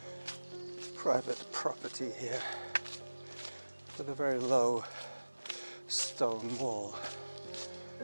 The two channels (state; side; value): inverted; both; correlation -1.00